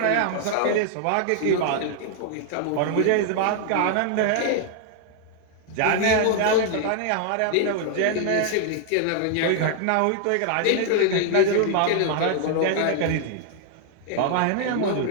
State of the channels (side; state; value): both; different; correlation 0.00